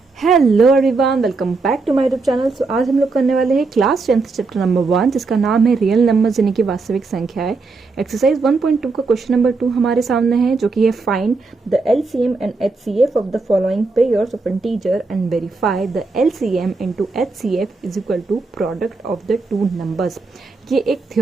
Hello everyone, welcome back to my YouTube channel. So आज हम लोग करने वाले हैं क्लास 10th चैप्टर नंबर 1, जिसका नाम है रियल नंबर्स यानी कि वास्तविक संख्याएं। एक्सरसाइज 1.2 का क्वेश्चन नंबर 2 हमारे सामने है, जो कि है find the LCM and HCF of the following pairs of integer and verify the LCM into HCF is equal to product of the two numbers. ये एक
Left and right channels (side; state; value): left; quieter; 4.0 dB